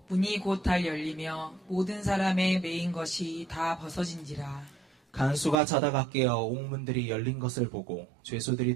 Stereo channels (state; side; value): drops out; left; at 5.6 s